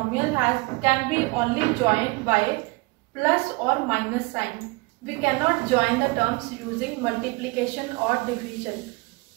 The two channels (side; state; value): left; quieter; 25.5 dB